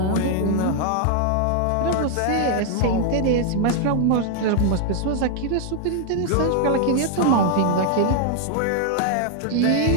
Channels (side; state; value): both; different; correlation 0.00